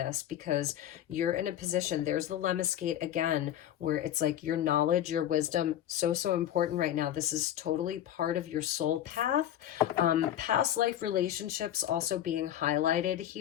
because you're in a position, there's the Lemniscate again, where it's like your knowledge, your wisdom, so important right now. This is totally part of your soul path. Past life relationships also being highlighted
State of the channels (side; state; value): right; quieter; 11.4 dB